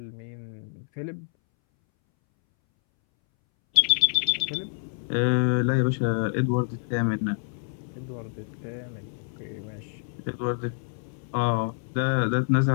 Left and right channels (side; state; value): right; silent; 60 dB below the other